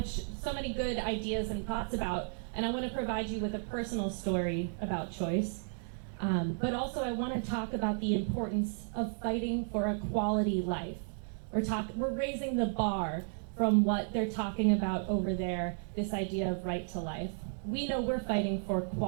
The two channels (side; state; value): left; silent; 55 dB below the other